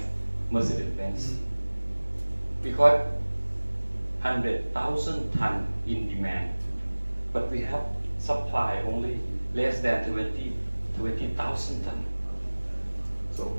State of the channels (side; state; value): both; inverted; correlation -1.00